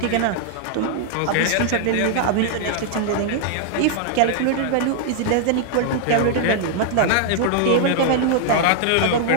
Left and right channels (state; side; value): different; both; correlation -0.01